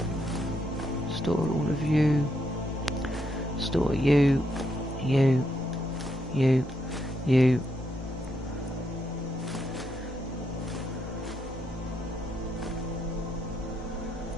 Store all of you. Store you. You. You. You.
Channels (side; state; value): both; normal; correlation 0.78